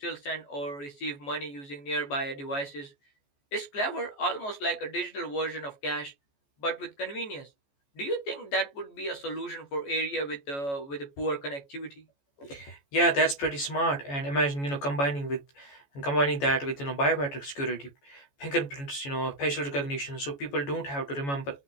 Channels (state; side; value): late; right; 14 ms